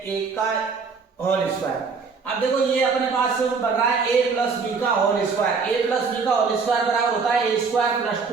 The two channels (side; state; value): left; quieter; 5.0 dB